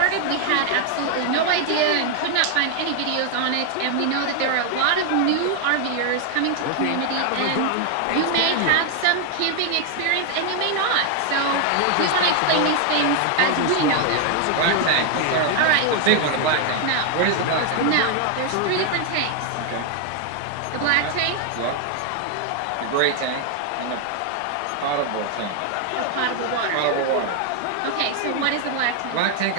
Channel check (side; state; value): both; different; correlation 0.00